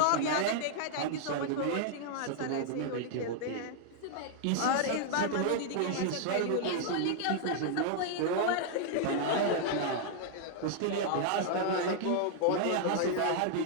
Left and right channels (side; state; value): both; different; correlation -0.01